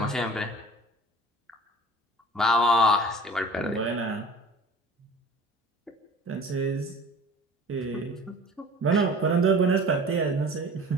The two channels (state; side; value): normal; both; correlation 0.44